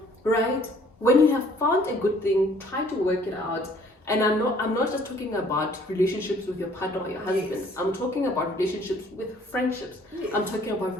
Right? When you have found a good thing, try to work it out. And I'm not just talking about relationships with your partner or your husband. Yes. I'm talking about relationships with friendships. Yes. I'm talking about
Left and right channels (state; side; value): normal; both; correlation 0.58